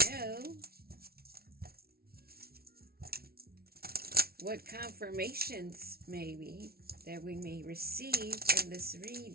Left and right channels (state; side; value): late; left; 0.44 ms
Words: know. What confirmations maybe that we may receive in this